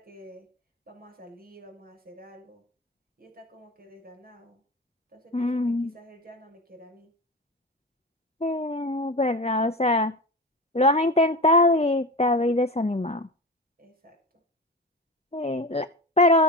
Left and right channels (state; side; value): normal; both; correlation 0.27